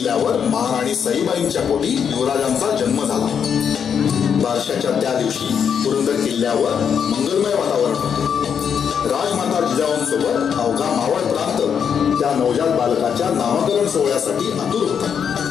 महाराणी सईबाईंच्या पोटी युवराजांचा जन्म झाला. बारशाच्या त्या दिवशी पुरंदर किल्ल्यावर मंगलमय वातावरण होते. राजमाता जिजाऊंसोबत अवघा मावळ प्रांत त्या नवजात बालकाच्या नामकरण सोहळ्यासाठी आतुर होता.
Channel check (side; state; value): right; quieter; 7.4 dB